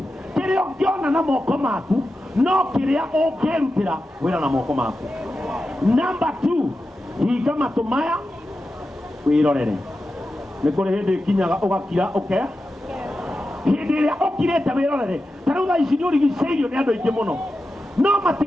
kĩrĩa ũngĩona na moko maku no kĩrĩa ũngĩrutĩra wĩra na moko maku. Number two, hinga matũ maya wĩrorere nĩ kũrĩ hĩndĩ kinyaga ũgakira hindi ĩrĩa ũkirĩte wĩrorere ta rĩu thaa ici nĩũrigicĩirio nĩ andũ aingĩ mũno no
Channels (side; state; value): both; normal; correlation 0.91